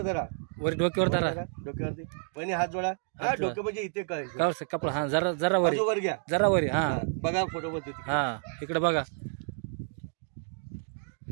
धरा वर डोक्यावर धरा डोक्यावरती पण हात जोडा हा डोकं म्हणजे इथे काय कपडा हा जरा वर घ्या जरा वर हा बघा फोटो मध्ये हा इकडे बघा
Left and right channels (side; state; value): left; silent; 58 dB below the other